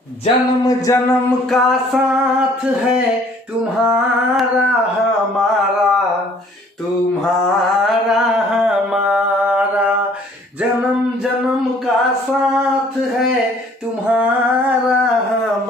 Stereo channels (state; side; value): normal; both; correlation 0.57